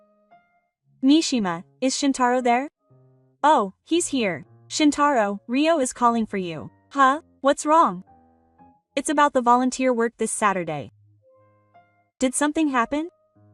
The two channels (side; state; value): both; identical; correlation 1.00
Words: Mishima, is Shintaro there? Oh, he's here. Shintaro, Ryo is calling for you. Huh? What's wrong? It's about the volunteer work this Saturday. Did something happen?